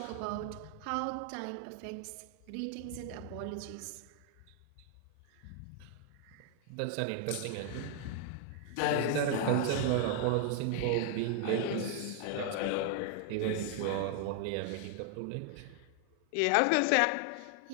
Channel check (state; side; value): different; both; correlation 0.00